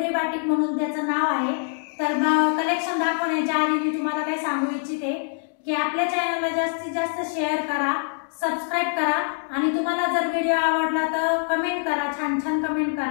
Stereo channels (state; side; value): silent; right; digital silence